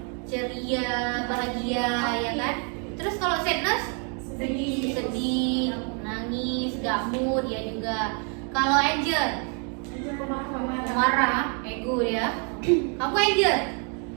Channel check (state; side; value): quieter; left; 39.4 dB